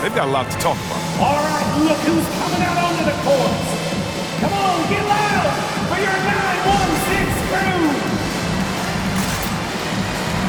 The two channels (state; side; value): identical; both; correlation 1.00